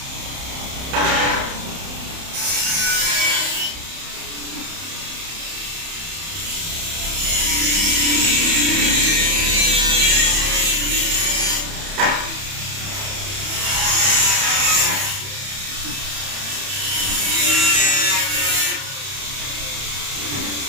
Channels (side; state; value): left; late; 31 ms